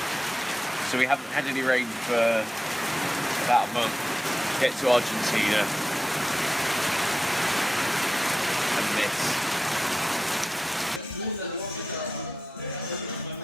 So we haven't had any rain for about a month. Get to Argentina and miss.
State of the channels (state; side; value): normal; both; correlation 0.92